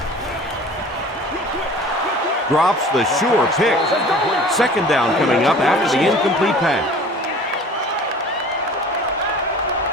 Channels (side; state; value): both; normal; correlation 0.44